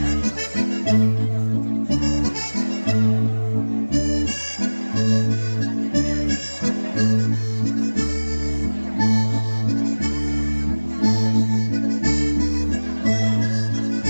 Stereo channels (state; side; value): inverted; both; correlation -1.00